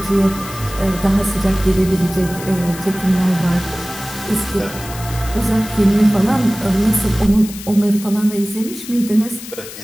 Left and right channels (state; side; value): noise; left; hiss, 13 dB below the sound